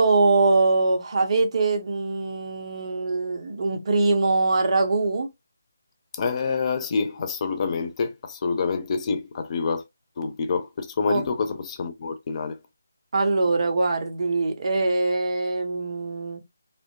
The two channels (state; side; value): inverted; both; correlation -0.82